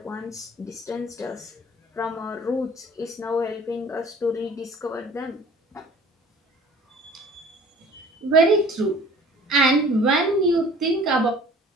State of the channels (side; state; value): both; normal; correlation 0.49